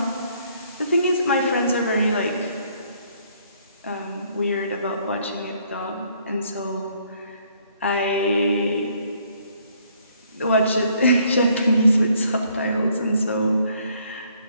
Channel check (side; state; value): both; inverted; correlation -0.65